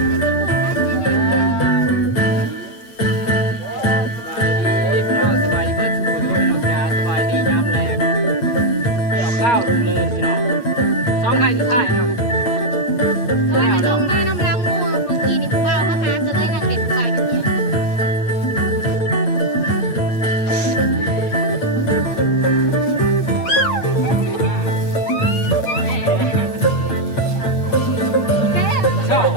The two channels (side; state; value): right; late; 8.8 ms